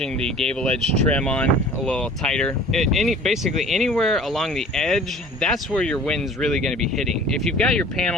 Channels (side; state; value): both; normal; correlation 0.46